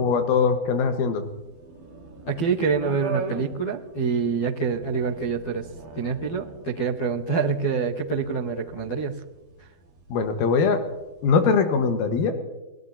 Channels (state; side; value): late; right; 12 ms